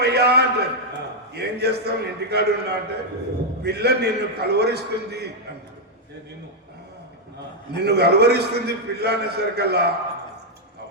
అంటారు. ఏం చేస్తాం, ఇంటికాడు ఉన్నా అంటే పిల్ల నిన్ను కలవరిస్తుంది అంటారు. నిన్ను కలవరిస్తుంది పిల్ల అనేసరికల్లా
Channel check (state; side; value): normal; both; correlation -0.02